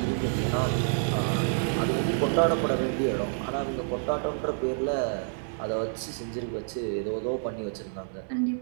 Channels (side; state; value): left; silent; digital silence